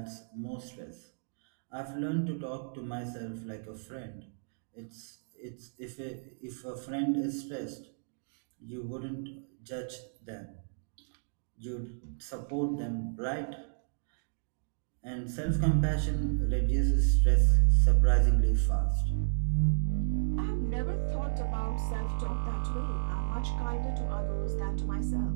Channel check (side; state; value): left; silent; digital silence